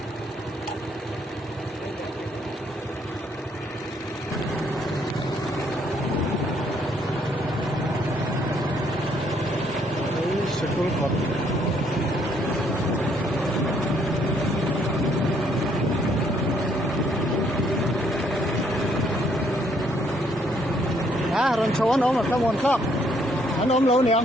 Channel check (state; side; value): normal; both; correlation 0.68